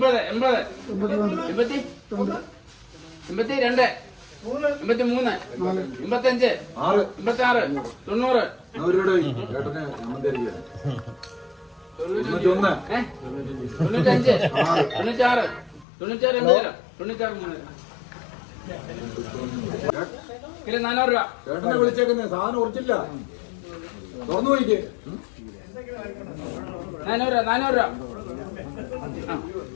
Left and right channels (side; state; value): right; drops out; at 15.9 s